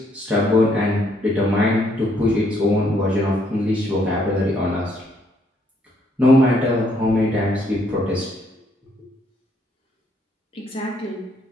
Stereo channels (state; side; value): normal; both; correlation 0.70